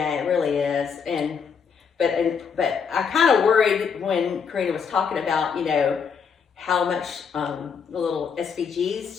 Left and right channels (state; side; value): quieter; right; 6.3 dB